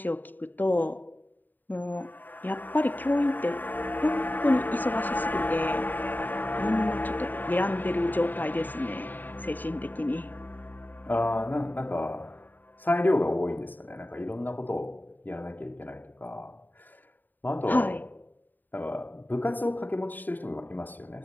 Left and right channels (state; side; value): late; right; 0.088 ms